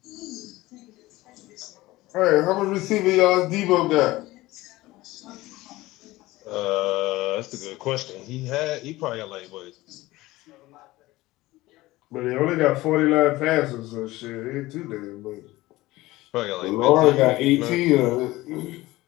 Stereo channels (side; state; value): right; quieter; 18.6 dB